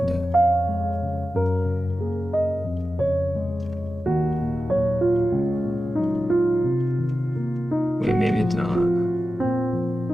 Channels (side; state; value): both; normal; correlation 0.93